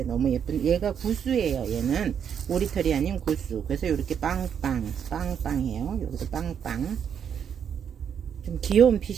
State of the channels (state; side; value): quieter; left; 8.0 dB